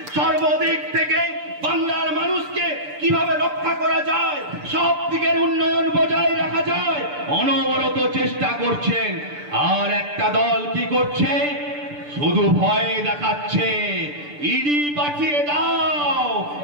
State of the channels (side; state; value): left; late; 6.8 ms